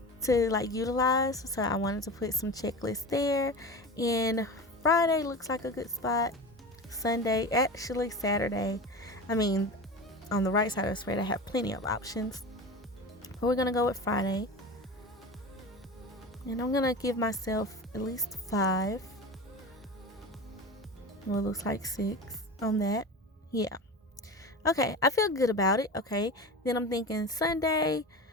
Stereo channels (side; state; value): both; normal; correlation 0.29